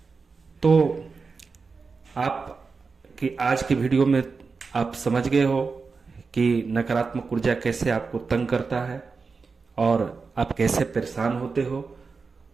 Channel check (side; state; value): left; quieter; 4.7 dB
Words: तो आप कि आज की वीडियो में आप समझ गए हो कि नकारात्मक ऊर्जा कैसे आपको तंग करता है, और आप कैसे परेशान होते हो,